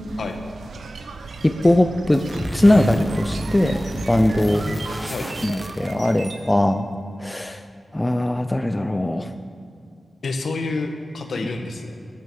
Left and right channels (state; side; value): normal; both; correlation 0.97